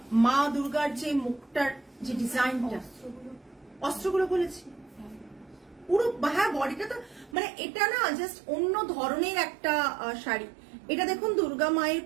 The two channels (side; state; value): left; drops out; at 7.4 s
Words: মা দুর্গার যে মুখটার যে ডিজাইনটা, অস্ত্রগুলো বলেছি পুরো, হ্যাঁ বডিটা তো মানে এটা না জাস্ট অন্য ধরনের একটা শাড়ি। এটা দেখুন দুর্গা মায়ের